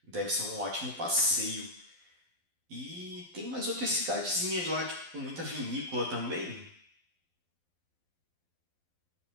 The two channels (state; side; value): late; left; 12 ms